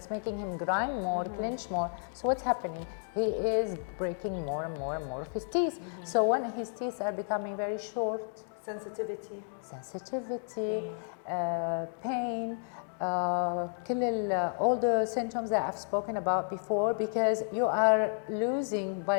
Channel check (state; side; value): silent; right; digital silence